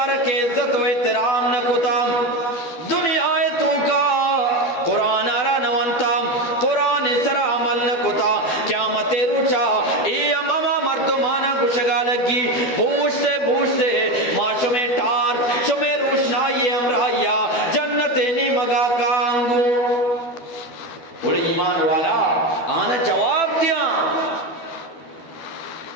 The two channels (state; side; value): late; right; 12 ms